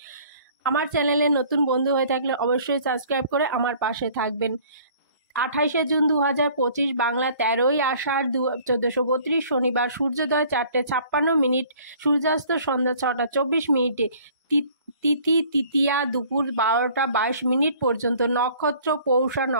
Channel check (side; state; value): both; inverted; correlation -0.53